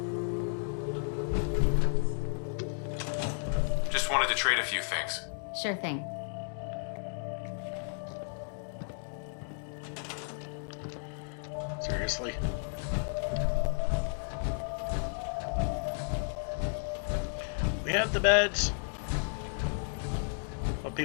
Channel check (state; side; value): silent; right; digital silence